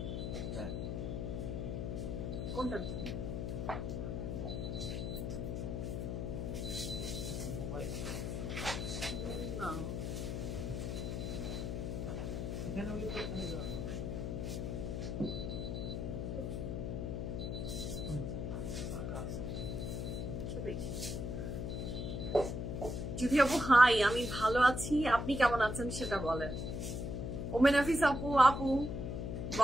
হ্যাঁ। কোনটার জন্য? না এখানে হলে তো ওখানে যাওয়া হবে। যদি আপু হাই, আমি ভালো আছি, আপনি কেমন আছেন সেটা বলেন। ওমেন হাফিজ আপু, আপু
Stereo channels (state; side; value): noise; left; hum, 2 dB below the sound